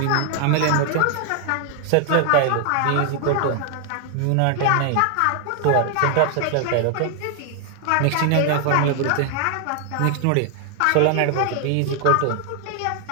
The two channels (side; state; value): both; different; correlation 0.00